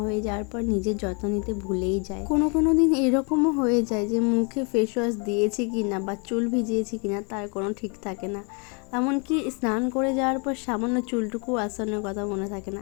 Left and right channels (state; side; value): quieter; right; 35.0 dB